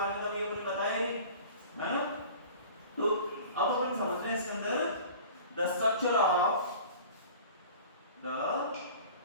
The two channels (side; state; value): both; inverted; correlation -0.42